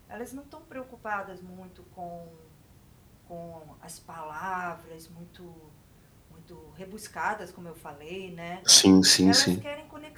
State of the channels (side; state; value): both; identical; correlation 1.00